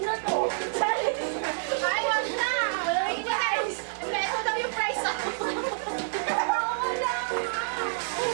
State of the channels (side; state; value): left; silent; digital silence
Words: na to. Ay, wag na. Wait, guys. Ito daw yung price ako.